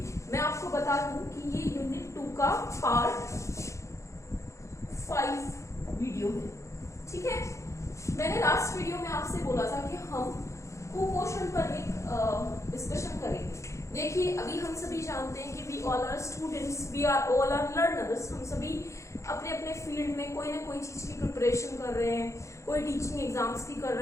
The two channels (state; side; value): late; right; 0.14 ms